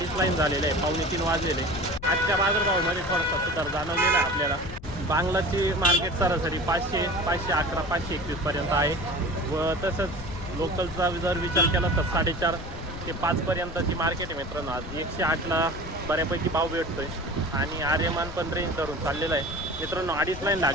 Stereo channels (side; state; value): left; noise; rumble, 12 dB below the sound